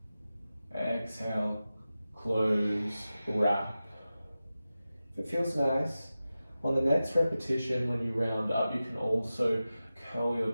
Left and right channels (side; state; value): both; inverted; correlation -0.94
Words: Exhale, close, wrap. If it feels nice, on the next repetition, when you round up, you can also curl your